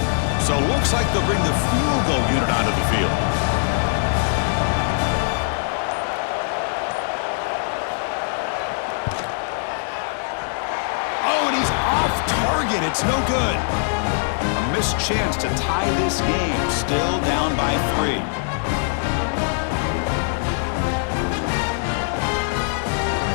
So it looks like they'll bring the field goal unit onto the field. Oh, and he's off target. It's no good. A missed chance to tie this game. Still down by 3.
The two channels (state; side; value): silent; right; digital silence